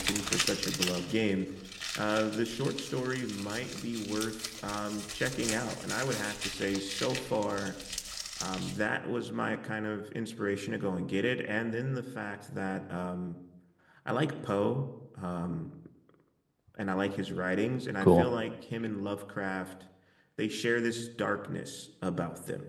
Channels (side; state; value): both; identical; correlation 1.00